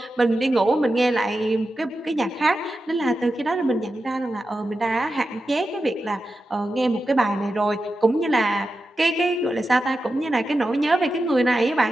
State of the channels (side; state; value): both; normal; correlation 0.91